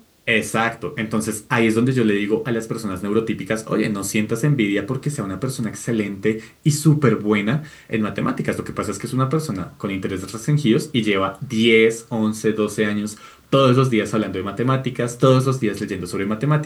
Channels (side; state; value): both; identical; correlation 1.00